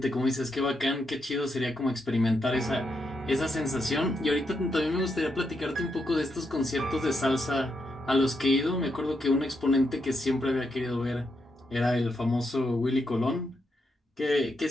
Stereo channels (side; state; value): both; normal; correlation 0.82